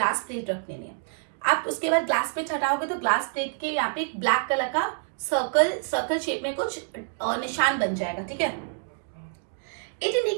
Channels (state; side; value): silent; left; digital silence